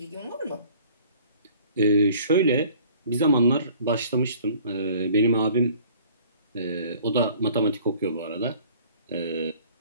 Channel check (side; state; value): both; inverted; correlation -0.52